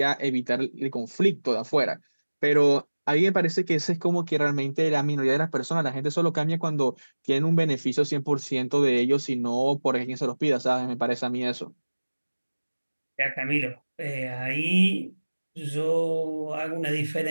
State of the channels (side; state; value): both; inverted; correlation -1.00